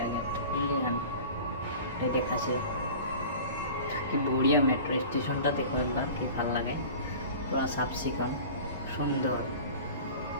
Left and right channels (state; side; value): inverted; both; correlation -0.39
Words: গেট ইন্ডিয়ান এটা দেখাছে কি বড়িয়া মেট্রো স্টেশনটা দেখো একবার কি ভালো লাগে পুরো সাফ সিকন সুন্দর